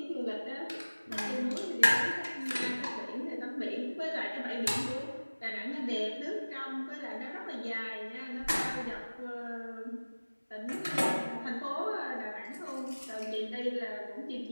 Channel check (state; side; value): inverted; both; correlation -1.00